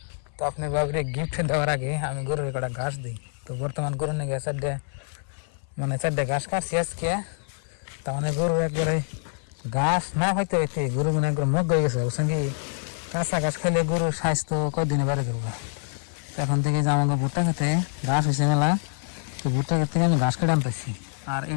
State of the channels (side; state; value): right; silent; 61 dB below the other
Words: তো আপনার বাবুরে গিফট দেওয়ার আগে আমি গরুর কটা ঘাস দিই। তো বর্তমান গরু নিয়ে গিয়ে চারটে ঘাস কাটছি আজকে। তার মানে গরু একবারে ঘাস না হইতে হইতে গরু মানে একবার মগ হয়ে গেছে, বুঝছেন কি? কাঁচা ঘাস খাইলে গরুর স্বাস্থ্য কয়দিনে বাড়ি করবো। তো এখন থেকে যে আমাকে ভুট্টা খেতে ঘাস হয়েছে মেলা, তো ভুট্টা খেতে থেকে আমি ঘাস কেটে আনতেছি। আর